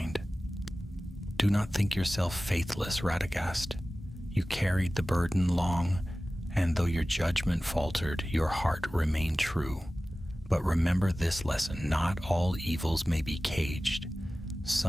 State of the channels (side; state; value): both; normal; correlation 0.97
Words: Do not think yourself faithless, Radagast. You carried the burden long, and though your judgment faltered, your heart remained true. But remember this lesson, not all evils may be caged.